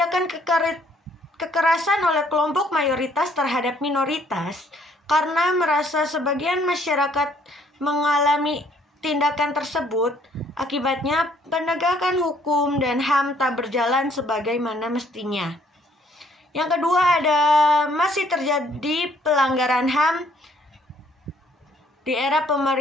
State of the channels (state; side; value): normal; both; correlation 0.64